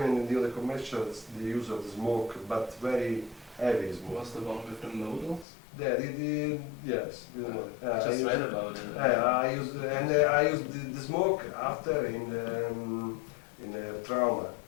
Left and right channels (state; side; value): drops out; right; at 5.5 s